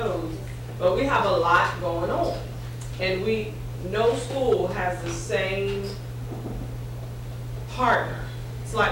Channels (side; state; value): both; identical; correlation 1.00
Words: but we have a lot going on. And no school has the same partner. It's